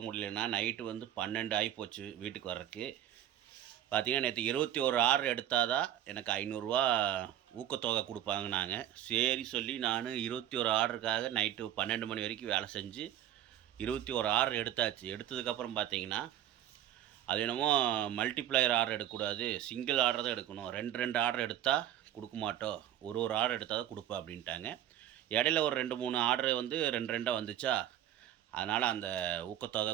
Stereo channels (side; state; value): left; quieter; 11.6 dB